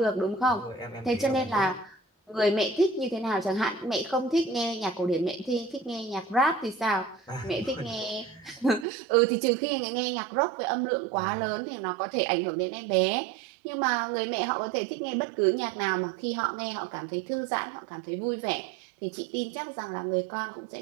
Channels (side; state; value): left; drops out; at 8.8 s